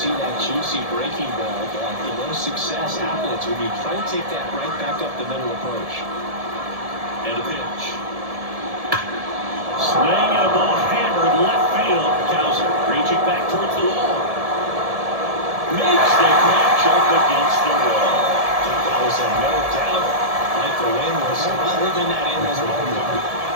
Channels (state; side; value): late; left; 1.7 ms